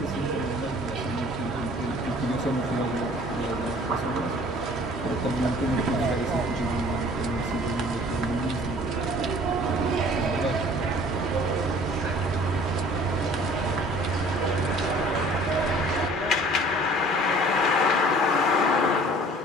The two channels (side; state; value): both; normal; correlation 0.51